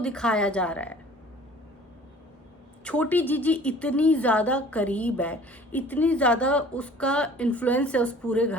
दिखाया जा रहा है। छोटी जीजी इतनी ज़्यादा करीब है, इतनी ज़्यादा उसका इन्फ्लुएंस है उस पूरे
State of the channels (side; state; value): both; normal; correlation 0.49